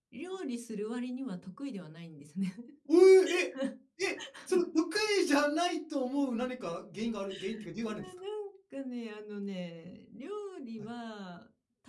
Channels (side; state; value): both; identical; correlation 1.00